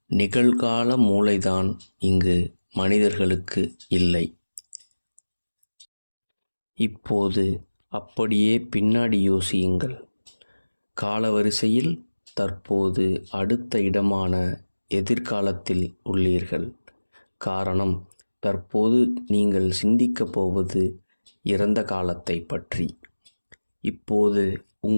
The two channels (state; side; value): inverted; both; correlation -1.00